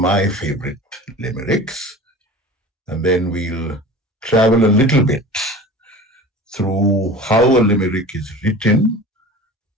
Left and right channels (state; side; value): normal; both; correlation 0.38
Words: favorite limericks, and then we'll travel a little bit through how a limerick is written,